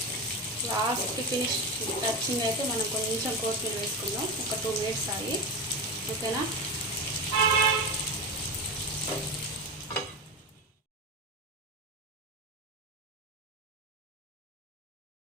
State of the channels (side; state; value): both; normal; correlation 0.20